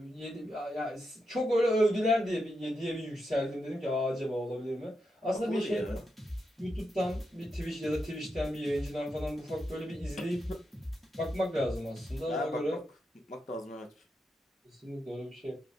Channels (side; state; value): both; normal; correlation 0.85